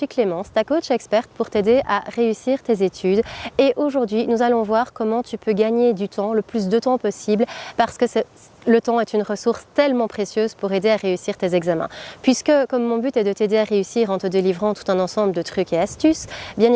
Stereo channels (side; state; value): both; identical; correlation 1.00